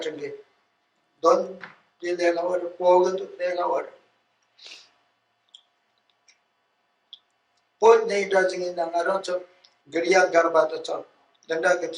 it. Don't do their hour, forward to their hour. Both they doesn't in the Naranto, Guriya Garbata Chop, the Nugget,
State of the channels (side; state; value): both; identical; correlation 1.00